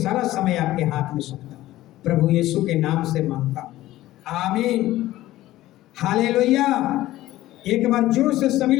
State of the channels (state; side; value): quieter; right; 15.7 dB